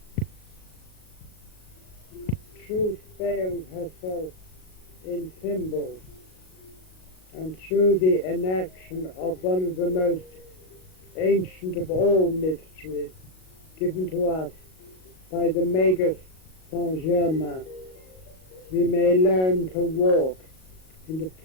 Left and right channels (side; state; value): right; late; 38 ms